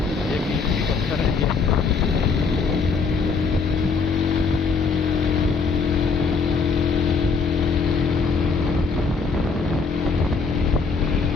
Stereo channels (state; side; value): quieter; right; 4.8 dB